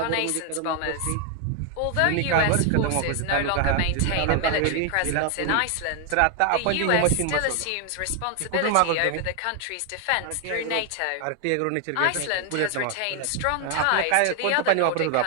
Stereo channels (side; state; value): both; different; correlation 0.00